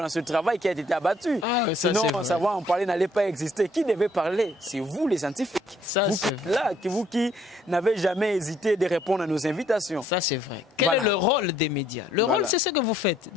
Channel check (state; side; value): normal; both; correlation 0.65